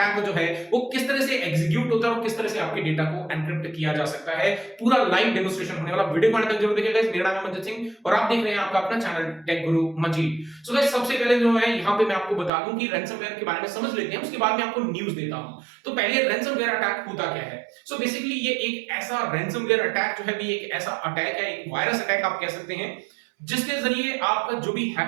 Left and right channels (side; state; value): left; drops out; at 12.5 s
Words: जो है वो किस तरह से एग्जीक्यूट होता है और किस तरह से आपके डेटा को एनक्रिप्ट किया जा सकता है। पूरा लाइव डेमोन्स्ट्रेशन होने वाला, वीडियो को अंत तक जरूर देखिएगा। मेरा नाम है मंजित सिंह और आप देख रहे हैं आपका अपना चैनल टेक गुरु मंजीत। सो गाइस, सबसे पहले जो है यहाँ पे मैं आपको बता दूं कि रैंसमवेयर के बारे में समझ लेते हैं, उसके बाद मैं आपको न्यूज देता हूं। तो पहले रैंसमवेयर अटैक होता क्या है। सो बेसिकली ये एक ऐसा रैंसमवेयर अटैक जो है भी एक ऐसा अटैक है, एक वायरस अटैक आप कह सकते हैं, जिसके जरिए आपका जो भी